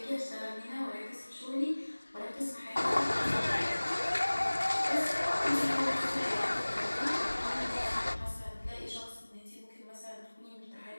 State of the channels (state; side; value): inverted; both; correlation -1.00